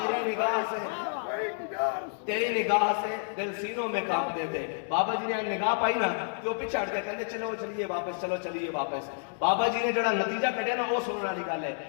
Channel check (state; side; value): silent; right; digital silence